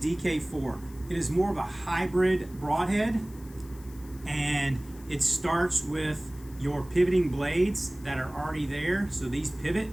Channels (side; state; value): left; noise; hiss, 23 dB below the sound